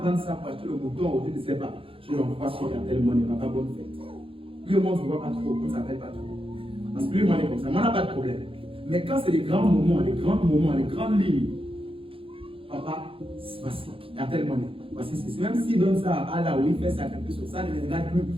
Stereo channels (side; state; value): left; late; 0.26 ms